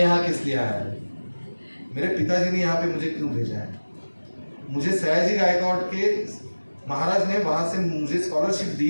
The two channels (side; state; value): both; inverted; correlation -1.00